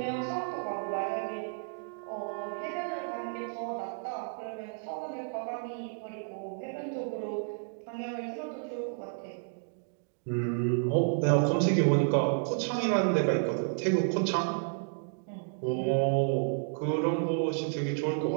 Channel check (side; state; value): left; silent; digital silence